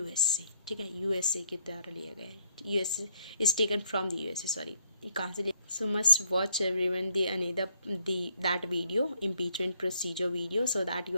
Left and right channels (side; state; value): both; inverted; correlation -0.71